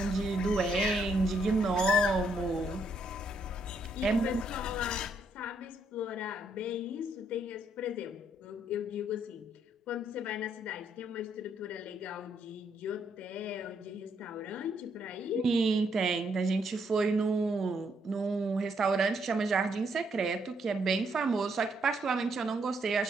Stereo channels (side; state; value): both; normal; correlation 0.73